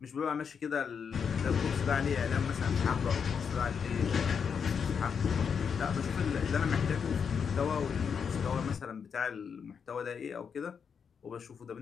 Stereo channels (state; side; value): quieter; right; 6.6 dB